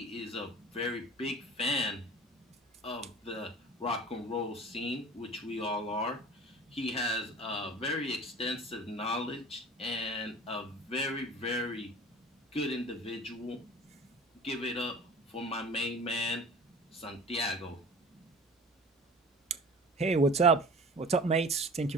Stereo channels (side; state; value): both; normal; correlation 0.40